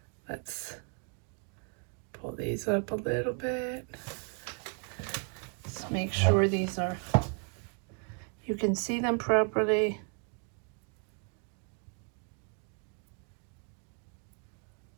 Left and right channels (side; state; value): left; quieter; 39.9 dB